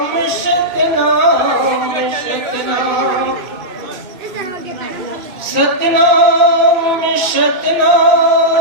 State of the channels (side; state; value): left; late; 2.6 ms